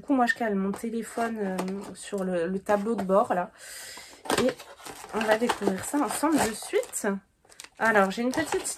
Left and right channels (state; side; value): identical; both; correlation 1.00